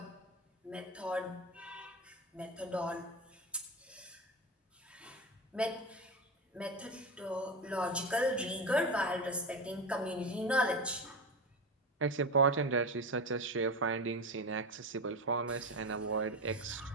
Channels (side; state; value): both; normal; correlation 0.20